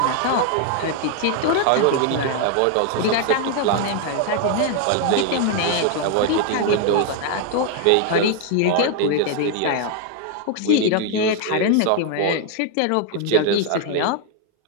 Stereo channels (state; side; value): different; both; correlation 0.00